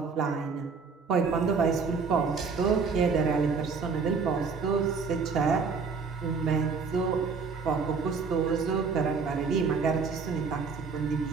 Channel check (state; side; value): quieter; left; 5.2 dB